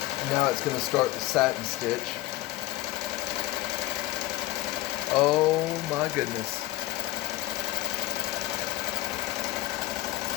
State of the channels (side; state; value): right; quieter; 17.7 dB